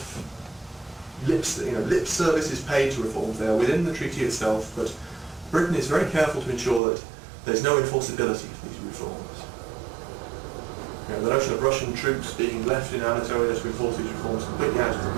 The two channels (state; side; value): drops out; left; at 6.8 s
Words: lip service is paid to reforms there within the treaty itself, but Britain is very careful to ensure that there's no enforceability for these reforms. The notion of Russian troops being left in Anatolia to enforce these reforms is completely out of the